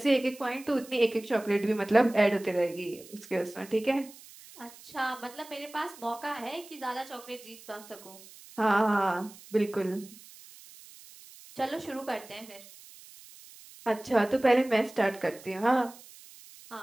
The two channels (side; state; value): right; noise; hiss, 20 dB below the sound